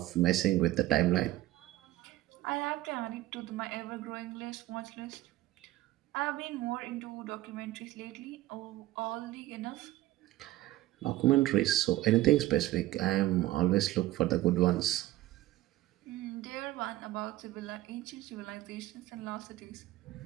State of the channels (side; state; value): left; quieter; 16.3 dB